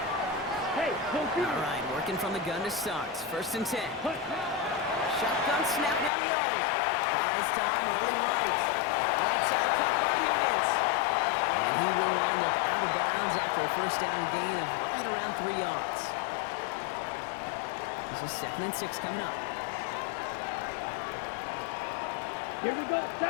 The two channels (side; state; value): right; drops out; at 6.1 s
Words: Hey, no fear. All right, working from the gun to start. First and 10. Shotgun snap now to Young. Buys time, rolling right. Right side cut by Higgins. And he will wind up out of bounds after a first down gain of right around 3 yards. This is 2nd and 6 coming up. Here we go.